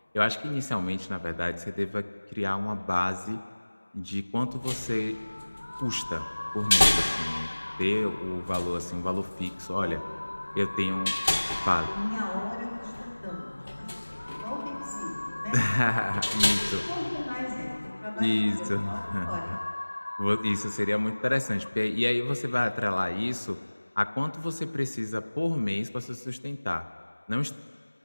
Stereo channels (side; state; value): both; inverted; correlation -1.00